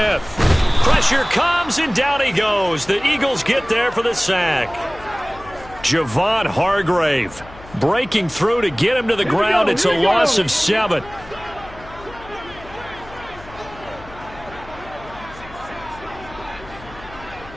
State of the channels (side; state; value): left; noise; hum, 19 dB below the sound